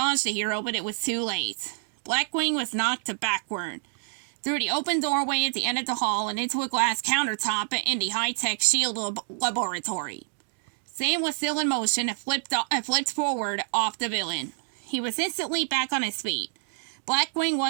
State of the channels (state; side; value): silent; left; 60 dB below the other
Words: the hero, but it was too late. Blackwing was knocked backward through the open doorway at the end of the hall and into a glass countertop in the high-tech shield laboratory. Sam was still in motion and flipped forward off the villain. He was instantly back on his feet. Blackwing